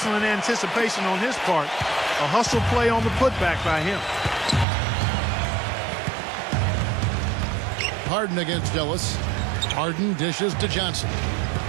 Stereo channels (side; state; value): left; drops out; at 4.7 s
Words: anticipation on his part. A hustle play on the putback by him. Harden against Ellis. Harden dishes to Johnson.